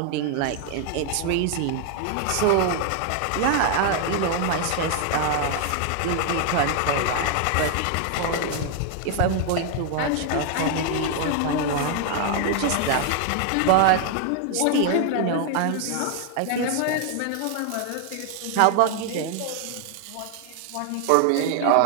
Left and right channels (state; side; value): different; both; correlation 0.00